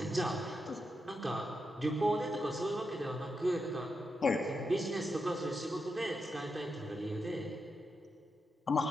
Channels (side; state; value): both; normal; correlation 0.85